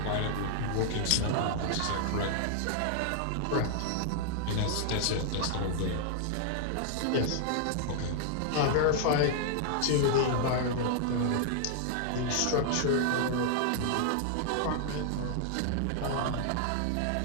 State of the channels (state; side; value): different; both; correlation -0.01